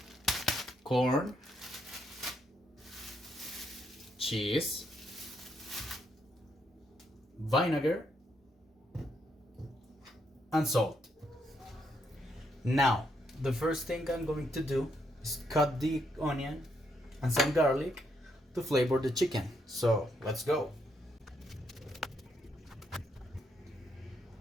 corn, cheese, vinegar, and salt. Now, the first thing I'm going to do is cut the onion and some garlic to flavor the chicken. So let's go.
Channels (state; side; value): normal; both; correlation 0.76